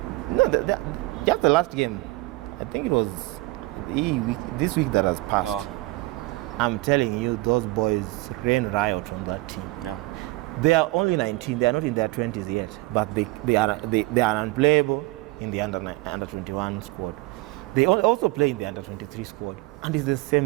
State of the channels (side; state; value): left; quieter; 21.6 dB